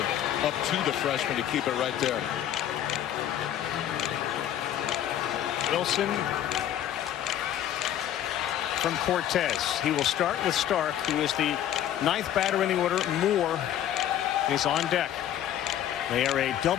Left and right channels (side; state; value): right; quieter; 11.2 dB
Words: freshman to keep it right there. Wilson from Cortez. He will start with Stark, who is the 9th batter in the order. Moore is on deck. They are a